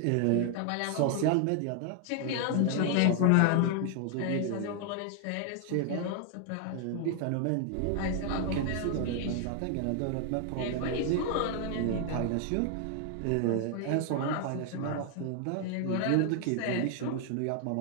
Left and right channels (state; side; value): different; both; correlation 0.00